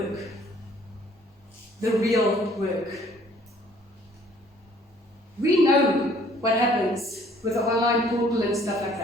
The real work. We know what happens with the online portal and stuff like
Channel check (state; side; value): normal; both; correlation 0.58